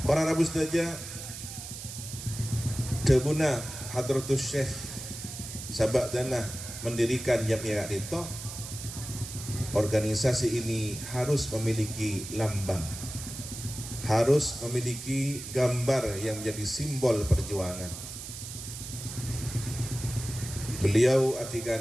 Para rabu saja debuna hadratus Syekh sabak dana mendirikan Jam'iyah itu, organisasi ini harus memiliki lambang, harus memiliki gambar yang menjadi simbol perjuangan. Beliau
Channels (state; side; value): noise; right; hiss, 10 dB below the sound